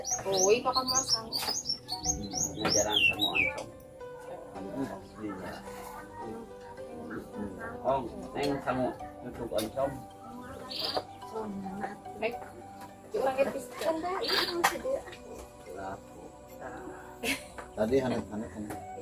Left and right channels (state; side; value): identical; both; correlation 1.00